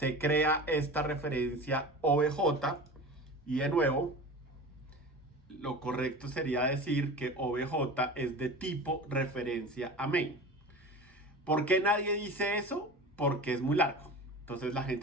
crea esta referencia obj. Y de nuevo, lo correcto sería decir que obj es de tipo referencia a main. ¿Por qué nadie dice eso? Porque es muy largo. Entonces la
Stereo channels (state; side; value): normal; both; correlation 0.34